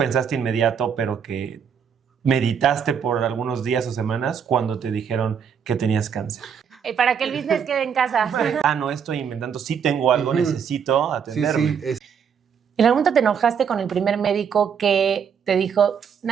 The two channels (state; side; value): quieter; left; 7.3 dB